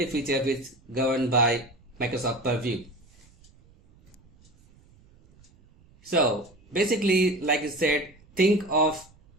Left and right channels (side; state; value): right; noise; rumble, 29 dB below the sound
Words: feature which is governed by Microsoft Purview. So basically, like I said, think of